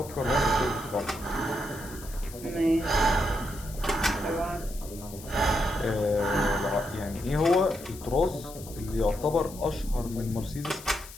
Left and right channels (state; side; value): noise; left; hiss, 16 dB below the sound